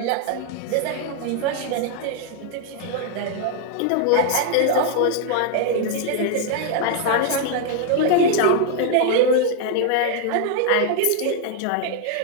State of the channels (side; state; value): both; different; correlation 0.00